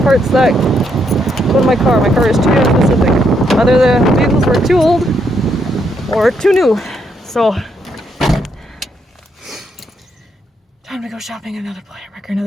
parts that go to my car. My car is too specific. Either the vehicles were too old or too new. So, time to go shopping another wrecker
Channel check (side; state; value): both; normal; correlation 0.76